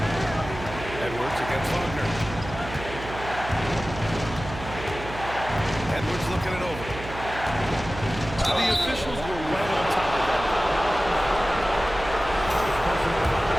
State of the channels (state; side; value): noise; right; hum, 11 dB below the sound